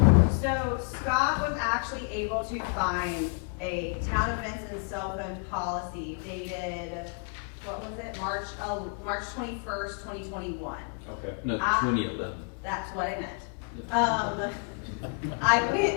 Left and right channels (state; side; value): quieter; right; 39.5 dB